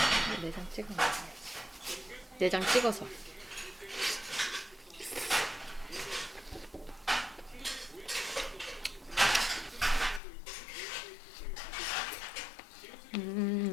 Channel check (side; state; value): right; drops out; at 10.2 s